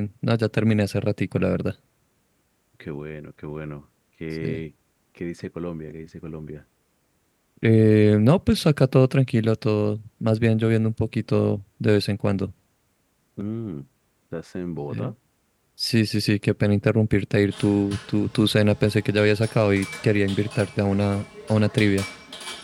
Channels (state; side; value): identical; both; correlation 1.00